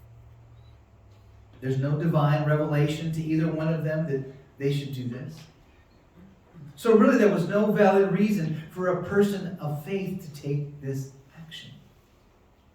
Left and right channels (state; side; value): identical; both; correlation 1.00